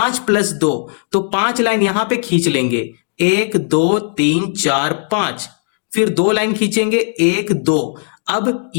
+ 2, तो 5 लाइन यहां पे खींच लेंगे, 1 2 3 4 5। फिर 2 लाइन खींचेंगे, 1 2। अब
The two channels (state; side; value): silent; right; digital silence